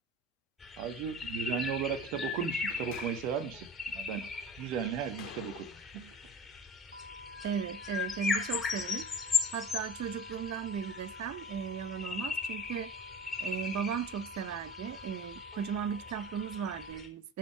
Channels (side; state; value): both; normal; correlation 0.37